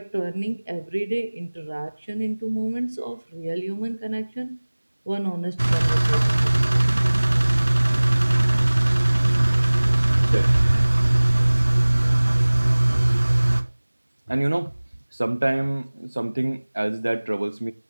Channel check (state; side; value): inverted; both; correlation -1.00